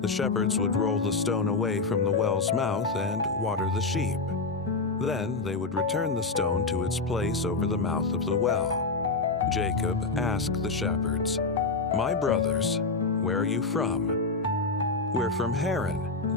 shepherds would roll the stone away from the well's mouth and water the sheep. Then they would return the stone to its place over the mouth of the well. Jacob asked the shepherds, "My brothers, where are you from?" "We're from Haran,"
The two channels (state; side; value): quieter; right; 3.8 dB